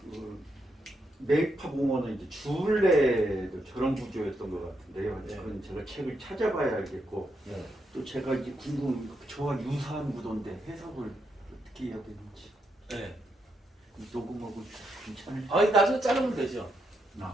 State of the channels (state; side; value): normal; both; correlation 0.80